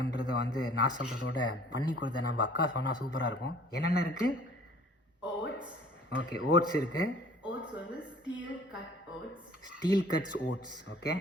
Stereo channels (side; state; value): both; normal; correlation 0.52